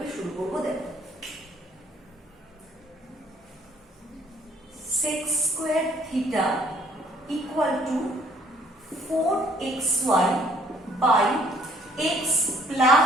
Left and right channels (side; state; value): both; normal; correlation 0.62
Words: শুরু করব দেখো। sec square theta equal to 4xy by x